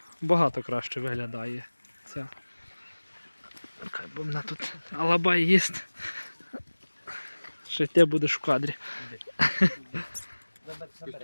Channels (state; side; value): inverted; both; correlation -1.00